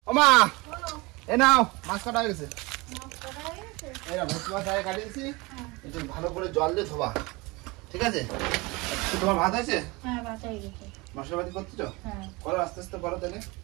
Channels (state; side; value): quieter; left; 24.6 dB